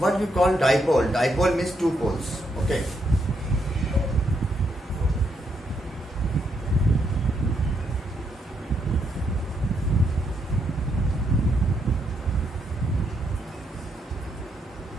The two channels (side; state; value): both; normal; correlation 0.77